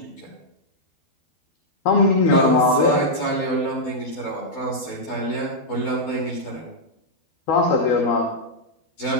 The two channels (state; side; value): late; right; 12 ms